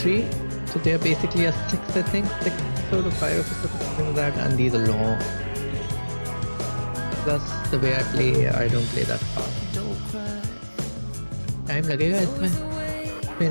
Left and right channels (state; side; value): inverted; both; correlation -1.00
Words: So they are basically a 6, I think, 6 episode or 5 episodes, something like that, and these are long. Plus the way I play, I don't play that fast. Time लगेगा इसमें,